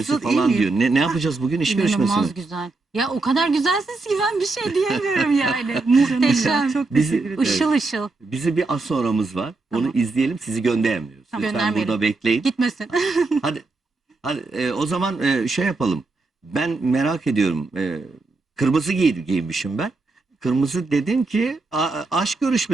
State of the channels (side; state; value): left; quieter; 3.6 dB